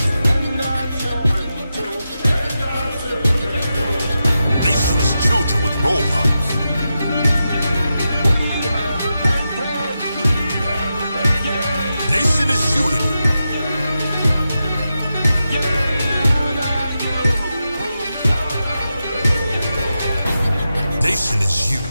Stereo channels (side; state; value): both; inverted; correlation -0.89